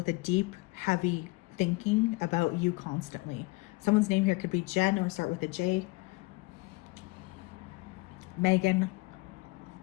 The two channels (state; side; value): quieter; right; 24.4 dB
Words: a deep, heavy thinking about you constantly. Someone's name here could be Jen, or start with a J. Megan.